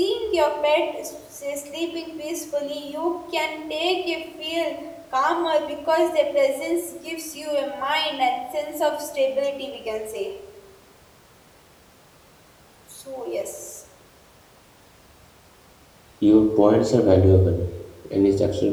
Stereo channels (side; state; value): both; identical; correlation 1.00